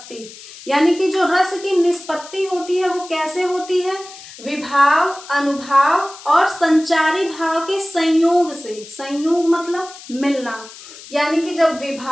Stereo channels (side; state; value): left; noise; hiss, 17 dB below the sound